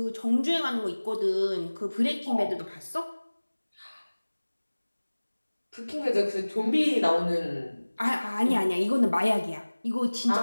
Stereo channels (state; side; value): inverted; both; correlation -1.00